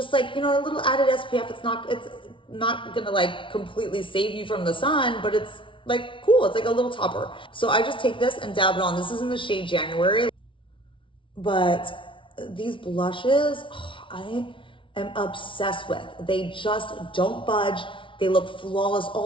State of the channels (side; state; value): right; late; 0.25 ms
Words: like, you know, a little added SPF. It's not gonna like completely save you from the sun, but it's like cool. It's like a little topper. So I just take this and dab it on. This is in the shade January. But these blushes, I am obsessed with. They just don't budge. They look flawless